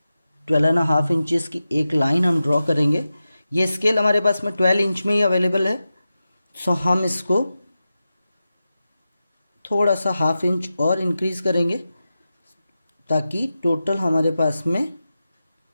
12.5 इंचेस की एक लाइन हम ड्रॉ करेंगे। ये स्केल हमारे पास में 12 इंच में ही अवेलेबल है। सो हम इसको थोड़ा सा हाफ इंच और इंक्रीज करेंगे ताकि टोटल हमारे पास में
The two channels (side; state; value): both; inverted; correlation -0.93